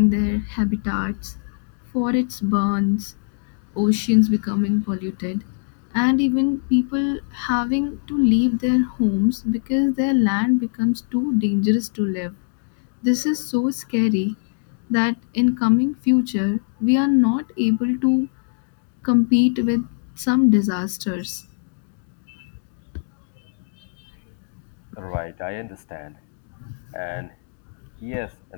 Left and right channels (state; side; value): silent; right; 64 dB below the other